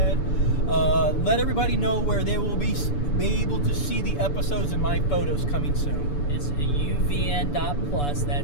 Let everybody know where they will be able to see the episodes and my photos coming soon. It's UVN.plus.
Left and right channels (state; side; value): late; right; 6.9 ms